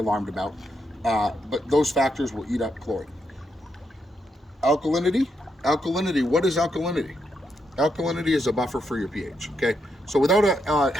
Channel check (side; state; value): both; normal; correlation 0.80